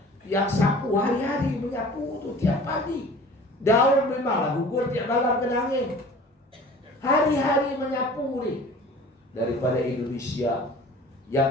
Yang sapu hari-hari menyapu tu tiap pagi. Daun memanglah gugur tiap malam kena angin. Hari-hari menyapu ni. Daripada Indonesia,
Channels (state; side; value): normal; both; correlation 0.44